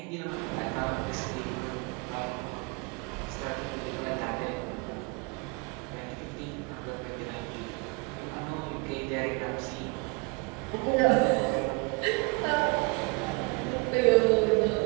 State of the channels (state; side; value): quieter; left; 29.9 dB